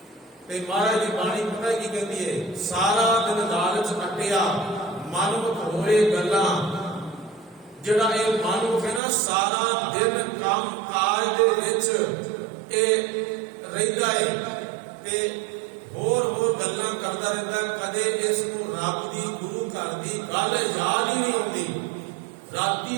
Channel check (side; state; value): left; drops out; at 9.0 s